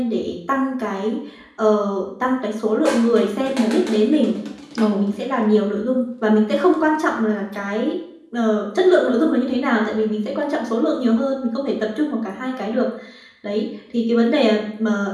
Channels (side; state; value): both; identical; correlation 1.00